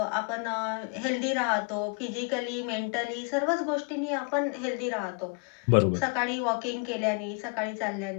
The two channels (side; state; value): right; quieter; 35.2 dB